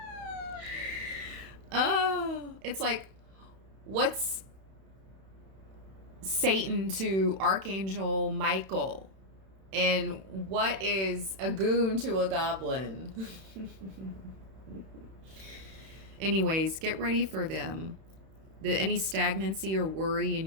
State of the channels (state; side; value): late; left; 31 ms